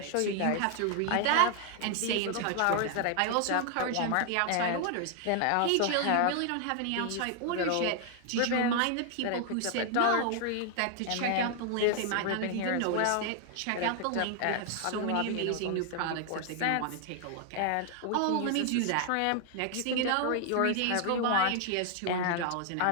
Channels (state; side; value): different; both; correlation 0.00